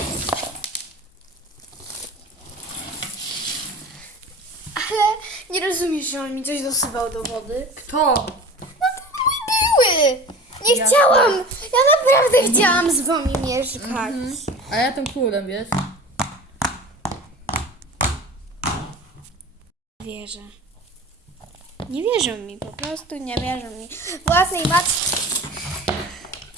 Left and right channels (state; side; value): normal; both; correlation 0.37